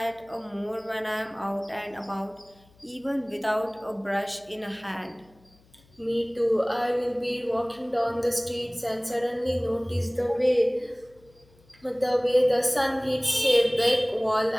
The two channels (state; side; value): noise; left; hum, 30 dB below the sound